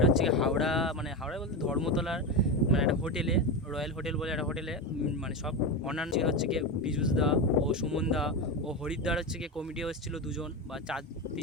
হচ্ছে হাওড়া, মানে হাওড়া বলতে ধর্মতলার মানে একটা হোটেলে, রয়্যাল হোটেল বলে একটা হোটেলে। মানে সব অন্যান্য হচ্ছে কি পীযুষ দা ও সুমন দা ও হরিদ্বার হচ্ছে কি কমিটিও এসেছিলো, 2জন বা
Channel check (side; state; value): both; normal; correlation 0.17